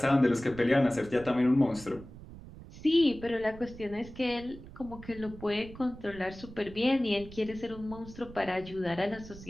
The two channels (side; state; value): right; noise; rumble, 16 dB below the sound